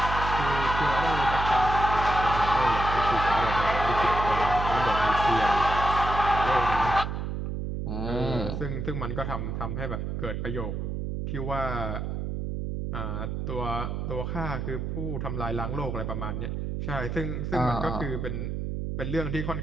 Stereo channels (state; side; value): noise; right; hum, 3 dB below the sound